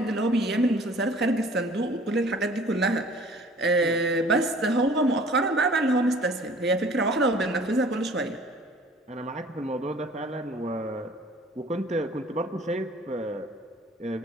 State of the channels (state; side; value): normal; both; correlation 0.51